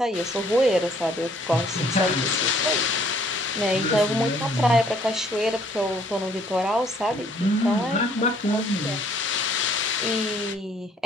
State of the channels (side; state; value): both; normal; correlation 0.61